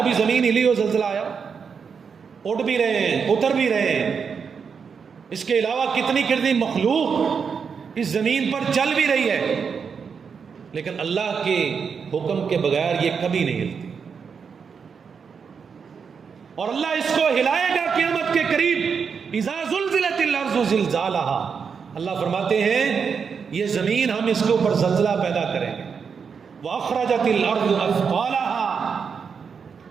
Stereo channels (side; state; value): left; quieter; 6.2 dB